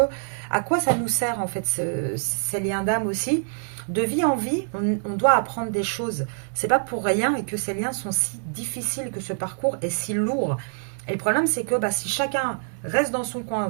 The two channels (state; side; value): silent; left; 62 dB below the other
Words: à quoi ça nous sert, en fait, ces liens d'âme aussi? De vie en vie, on doit apprendre des choses. C'est pas pour rien et que ces liens sont si difficiles, que ce parcours est si lourd. Et le problème, c'est que si chacun reste dans son coin,